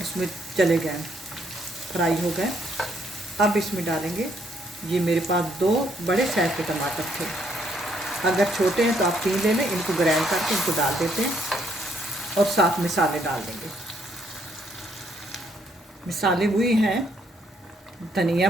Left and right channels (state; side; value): normal; both; correlation 0.70